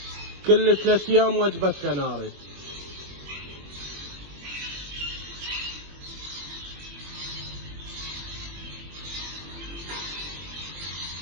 كل 3 ايام وجبة كناري.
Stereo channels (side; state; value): left; late; 21 ms